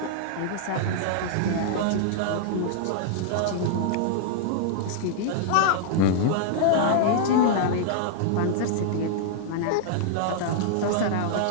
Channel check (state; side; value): different; both; correlation -0.01